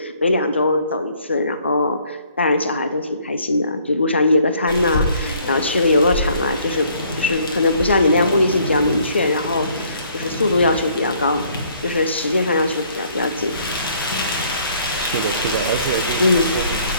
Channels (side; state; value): both; inverted; correlation -0.62